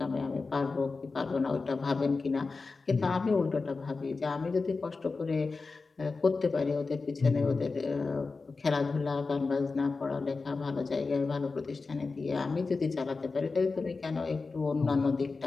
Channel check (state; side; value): quieter; right; 4.1 dB